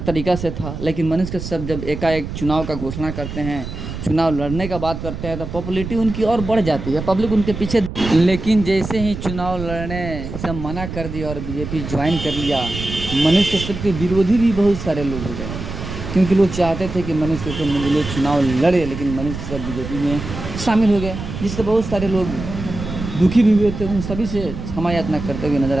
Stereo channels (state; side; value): noise; right; rumble, 8 dB below the sound